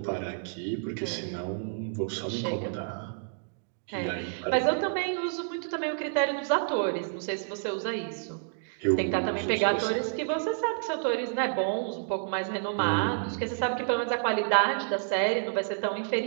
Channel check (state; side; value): silent; left; digital silence